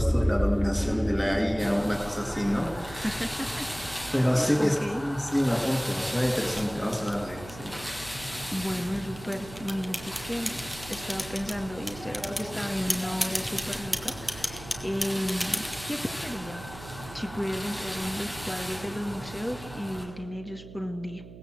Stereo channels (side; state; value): right; noise; hum, 15 dB below the sound